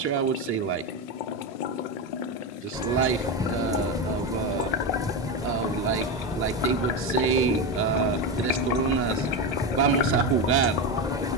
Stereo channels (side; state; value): both; normal; correlation 0.15